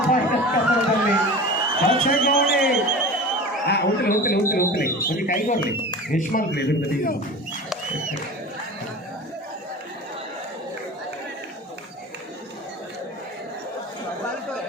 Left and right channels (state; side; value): normal; both; correlation 0.35